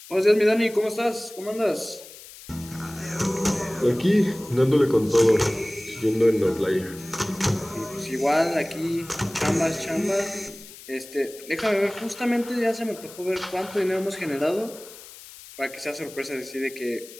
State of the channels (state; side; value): noise; left; hiss, 18 dB below the sound